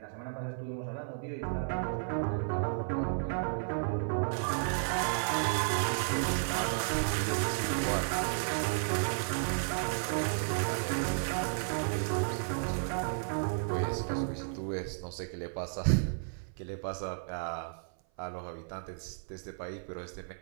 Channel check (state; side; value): silent; left; 56 dB below the other